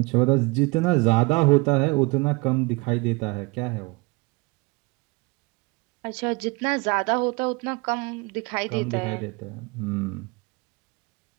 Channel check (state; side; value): quieter; left; 26.1 dB